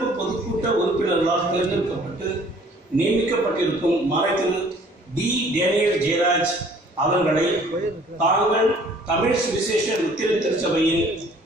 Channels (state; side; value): normal; both; correlation 0.55